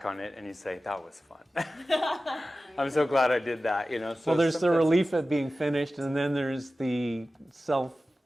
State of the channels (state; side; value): normal; both; correlation 0.95